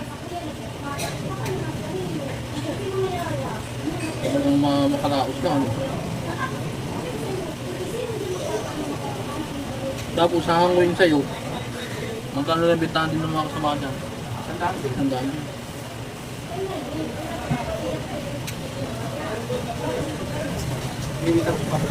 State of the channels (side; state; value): both; identical; correlation 1.00